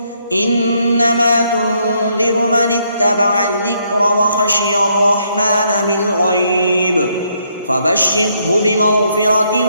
إنما تنذر من اتبع الذكر وخشي الرحمن بالغيب فبشره بمغفرة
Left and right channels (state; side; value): inverted; both; correlation -0.73